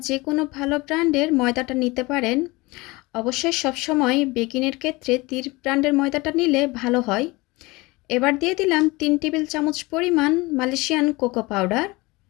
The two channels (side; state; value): right; quieter; 23.0 dB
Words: যে কোনো ভালো ব্র্যান্ডের ময়দাটা নিতে পারেন। অবশ্যই সবসময় বেকিংয়ের ক্ষেত্রে তীর ব্র্যান্ডের ময়দাটা নিলে ভালো হয়। এবার দিয়ে দিলাম 3 টেবিল চামচ পরিমাণ মালয়েশিয়ান কোকো পাউডার,